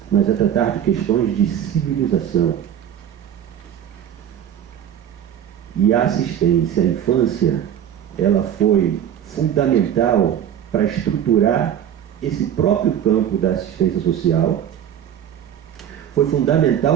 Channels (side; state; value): left; quieter; 9.9 dB